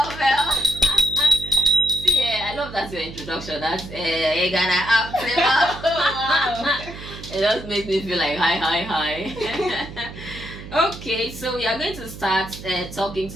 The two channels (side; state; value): right; noise; hum, 13 dB below the sound